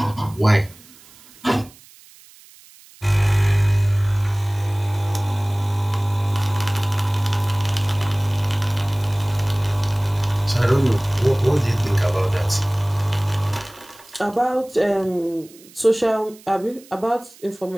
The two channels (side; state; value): right; noise; hiss, 24 dB below the sound